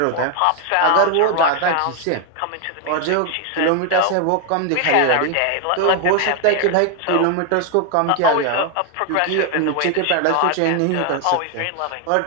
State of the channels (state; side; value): different; both; correlation 0.01